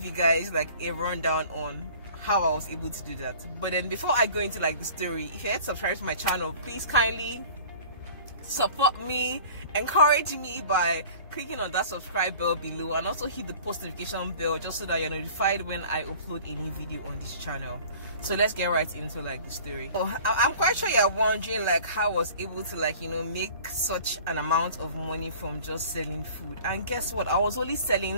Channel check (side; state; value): both; inverted; correlation -0.46